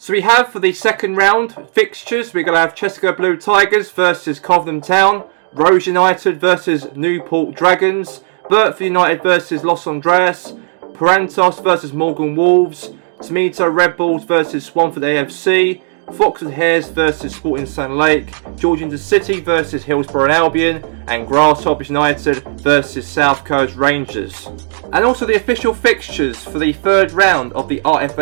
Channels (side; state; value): left; silent; digital silence